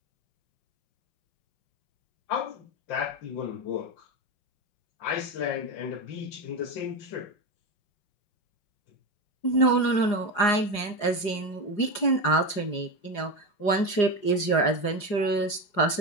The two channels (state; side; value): late; right; 4.9 ms